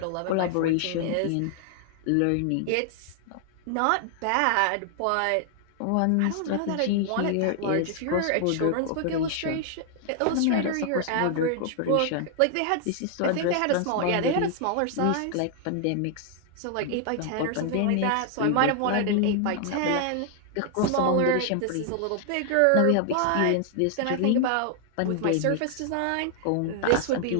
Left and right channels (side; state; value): both; different; correlation 0.00